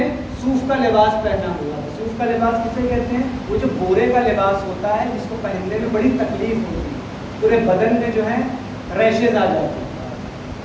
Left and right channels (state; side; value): identical; both; correlation 1.00